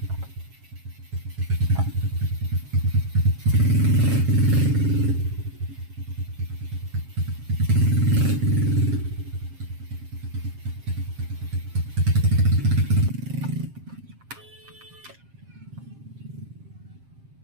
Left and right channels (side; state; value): left; late; 7.6 ms